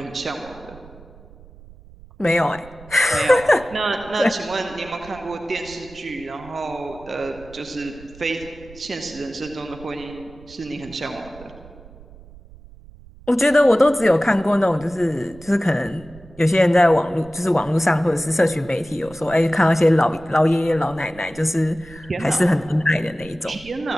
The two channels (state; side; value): noise; right; rumble, 21 dB below the sound